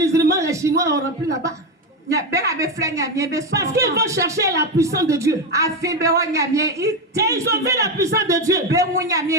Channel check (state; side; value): normal; both; correlation 0.12